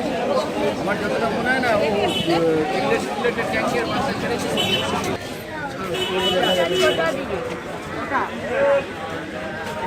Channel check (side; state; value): both; identical; correlation 1.00